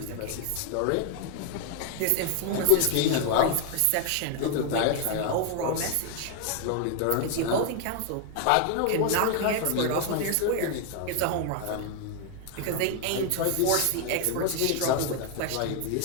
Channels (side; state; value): both; different; correlation 0.01